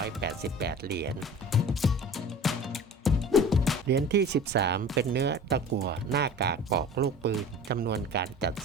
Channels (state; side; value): normal; both; correlation 0.40